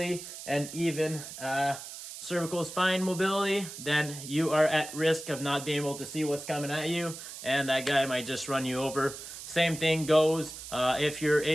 and even cervical spine mobility, then you are at risk of not being able to see what's coming at you, and that guy might just run you over. Same thing goes if you're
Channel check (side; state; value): right; noise; hiss, 11 dB below the sound